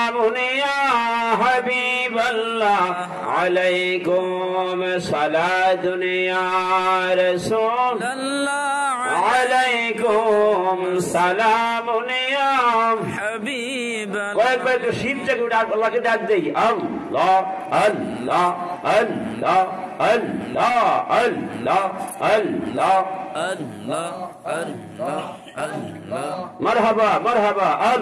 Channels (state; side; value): identical; both; correlation 1.00